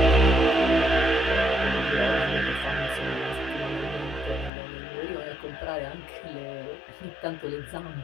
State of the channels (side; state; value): right; drops out; at 4.5 s